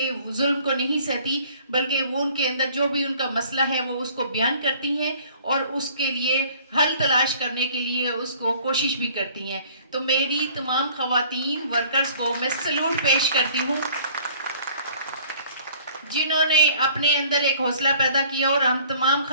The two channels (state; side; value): inverted; both; correlation -0.53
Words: ظلم کو نہیں سہتی, بلکہ وہ ان کے اندر جو بھی ان کا مسئلہ ہے وہ اس کو بیان کرتی ہیں اور اس کے لیے حل تلاش کرنے کے لیے اس کو کوشش بھی کرتی ہیں. تو میری تمام خواتین ورکرز کو میں سلوٹ پیش کرتی ہوں جنہوں نے اپنے اندر ایک حوصلہ پیدا کیا, اور ہم تمام